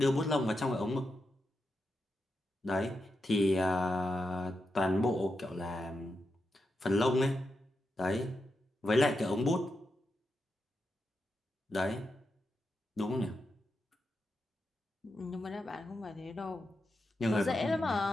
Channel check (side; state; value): both; normal; correlation 0.87